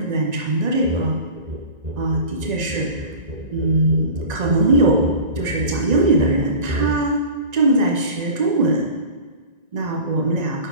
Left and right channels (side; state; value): left; late; 1.9 ms